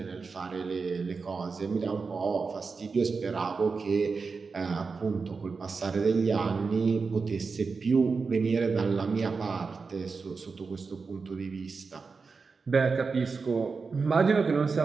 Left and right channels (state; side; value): quieter; left; 4.7 dB